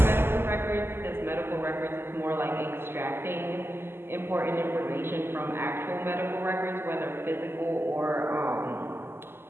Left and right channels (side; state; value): left; late; 0.11 ms